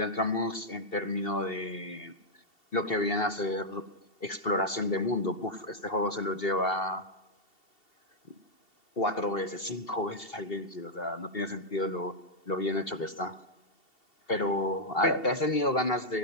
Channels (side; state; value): right; late; 2.7 ms